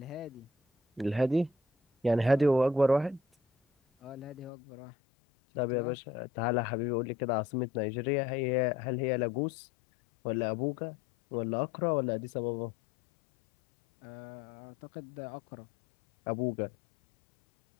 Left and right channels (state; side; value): drops out; right; at 4.5 s